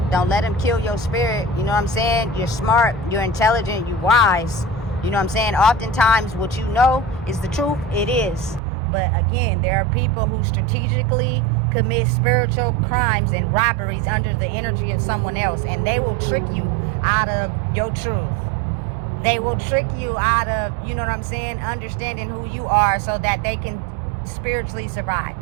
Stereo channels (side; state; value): left; drops out; at 8.6 s